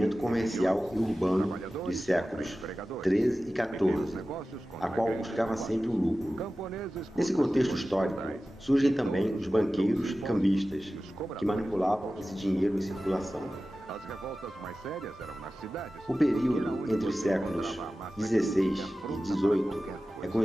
comercial e urbano dos séculos XIII e XIV, a qual buscava sempre o lucro. Nesse contexto histórico, surgem também os banqueiros e cambistas, que manipulavam esse dinheiro em circulação. O período entre os séculos XVI e XVIII é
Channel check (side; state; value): both; normal; correlation 0.95